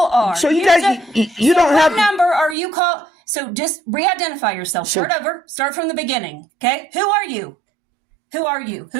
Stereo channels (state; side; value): drops out; left; at 2.6 s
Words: are. So you guys, you don't what have. number are you call? So just re-identify yourself. Start over. Start from the beginning. Okay. Who are you? Who are you?